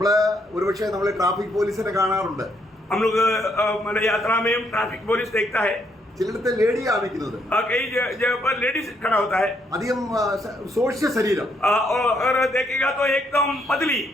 ഒരുപക്ഷെ നമ്മള് ട്രാഫിക് പോലീസിനെ കാണാറുണ്ട്. हम लोग मतलब यात्रा में ट्रैफिक पुलिस देखता है. ചിലയിടത്ത് ലേഡിയാണ് നിൽക്കുന്നത്. कई जगह पर लेडीज खड़ा होता है. അധികം സോഷ്യ ശരീരം. और देखेगा तो एकदम पतली.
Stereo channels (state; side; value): normal; both; correlation 0.73